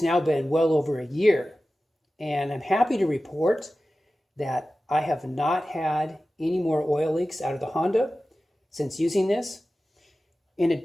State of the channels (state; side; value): normal; both; correlation 0.95